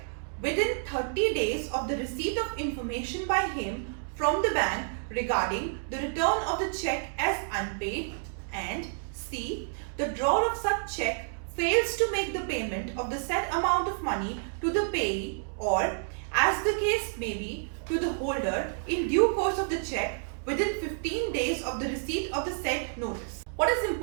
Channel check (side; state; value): left; silent; digital silence